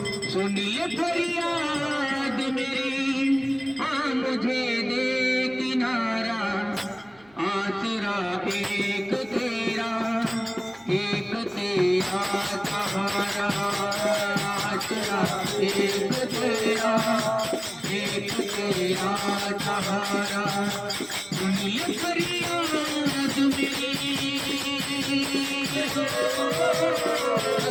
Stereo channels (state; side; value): noise; right; hum, 29 dB below the sound